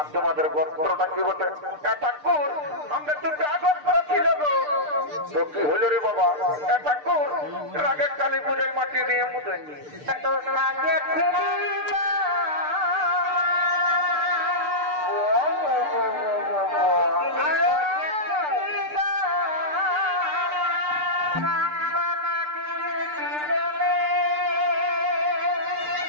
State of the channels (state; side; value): late; left; 6.7 ms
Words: তোমাদের গোত্রটা কি বটে? ঠাকুর আমরা দুটো আগস্ত্র ছিল গো। তো কি হলো রে বাবা? ঠাকুর রাগের কালী পূজায় মাটি দিয়ে মুদে